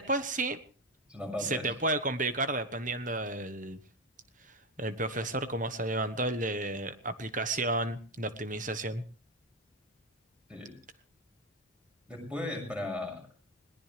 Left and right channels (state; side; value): normal; both; correlation 0.13